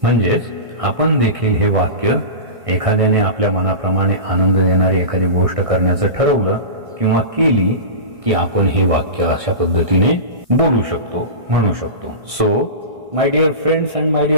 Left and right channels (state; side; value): late; left; 1.6 ms